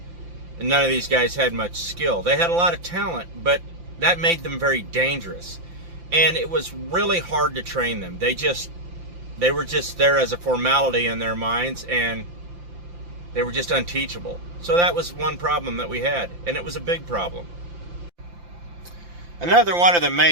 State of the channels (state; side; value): late; left; 5.8 ms